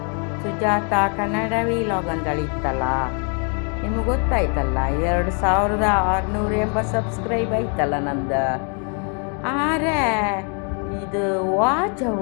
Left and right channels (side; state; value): right; quieter; 38.9 dB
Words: ಸುಜಾತ ಕನ್ನಡ ವಿಲಾಗ್ ಅಂತೇಳಿ ಇತ್ತಲ್ಲ, ನಿಮಗೆ ಗೊತ್ತಾಯ್ತಲ್ಲ. 2680 ಸಬ್ಸ್ಕ್ರೈಬ್ ಆಯ್ತಲ್ಲ ನಂದು. ಆದರೆ ಇದು ವಾಚ್